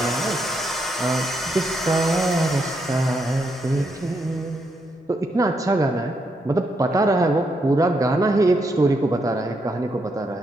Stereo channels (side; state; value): both; normal; correlation 0.79